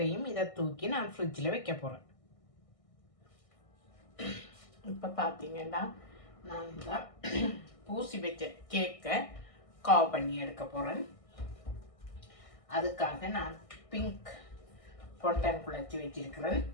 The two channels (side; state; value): right; late; 1.6 ms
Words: இதை தூக்கி நான் ஃப்ரிட்ஜில் வைக்க போகிறேன். இப்போ பார்த்தீங்கன்னா நான் இந்த பூசி வச்ச கேக்கை கவ் பண்ணி எடுக்க போகிறேன். அதுக்காக நான் பிங்க் பொண்டன் குழச்சி வச்சிருக்கிறேன்.